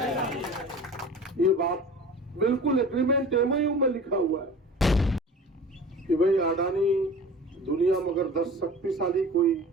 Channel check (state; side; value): normal; both; correlation 0.40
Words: ये बात बिल्कुल एग्रीमेंट एमओयू में लिखा हुआ है कि भाई अडानी दुनिया में अगर 10 शक्तिशाली कोई